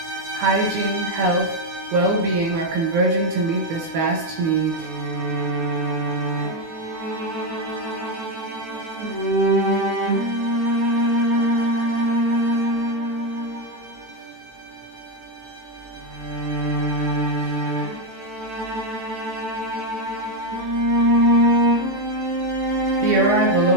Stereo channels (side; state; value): left; late; 18 ms